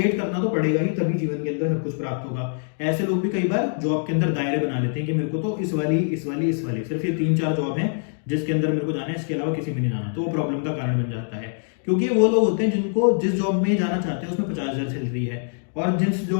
करना तो पड़ेगा ही, तभी जीवन के अंदर सब कुछ प्राप्त होगा। ऐसे लोग भी कई बार जॉब के अंदर दायरे बना लेते हैं कि मेरे को तो इस वाली सिर्फ ये 3-4 जॉब है जिसके अंदर मेरे को जाना है, इसके अलावा किसी में नहीं जाना। तो वो प्रॉब्लम का कारण बन जाता है, क्योंकि वो लोग होते हैं जिनको जिस जॉब में जाना चाहते हैं उसमें 50,000 सैलरी है और जिस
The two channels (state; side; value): silent; right; 63 dB below the other